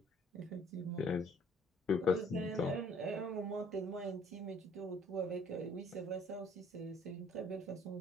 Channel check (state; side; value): normal; both; correlation 0.58